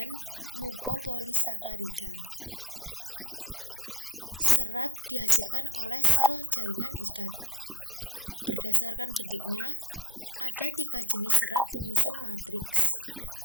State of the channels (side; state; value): both; normal; correlation 0.45